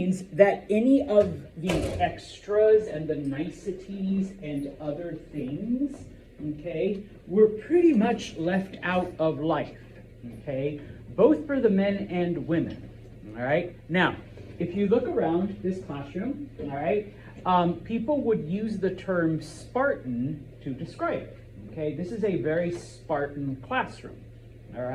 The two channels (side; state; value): both; identical; correlation 1.00